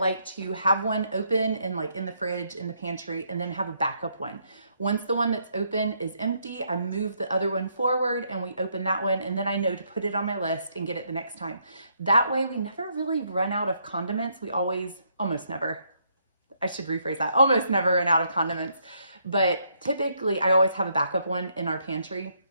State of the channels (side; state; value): both; inverted; correlation -0.73